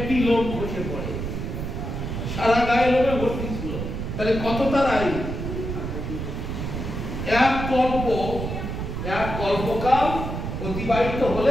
লোম খসে পড়ে, সারা গায়ে লোমে ভর্তি ছিল। তাহলে কত তার আয়ু? এক কল্পকাল অতিবাহিত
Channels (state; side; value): noise; right; rumble, 4 dB below the sound